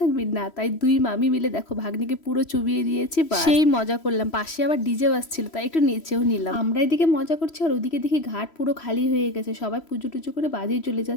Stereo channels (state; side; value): late; right; 3.1 ms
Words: থাকবি না, তাই দুই মামি মিলে দেখো ভাগ্নিকে পুরো চুবিয়ে দিয়েছি, সেই মজা করলাম। পাশে আবার ডিজে বাজছিল, তাই একটু নিচেও নিলাম। আমরা এদিকে মজা করছি আর ওদিকে দেখি ঘাট পুরো খালি হয়ে গেছে, সবাই পুজো টুজো করে বাজেই চলে